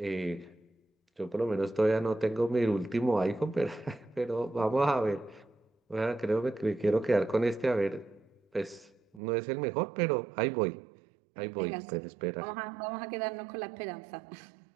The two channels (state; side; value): drops out; left; at 9.2 s